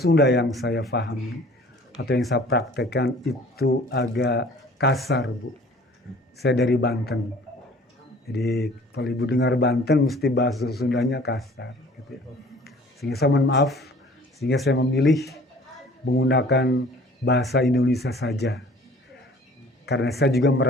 yang saya pahami atau yang saya praktekkan itu agak kasar, Bu. Saya dari Banten. Jadi kalau Ibu dengar Banten mesti bahasa Sundanya kasar gitu ya. Sehingga saya mohon maaf, sehingga saya memilih menggunakan bahasa Indonesia saja. Karena saya juga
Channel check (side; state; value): both; normal; correlation 0.50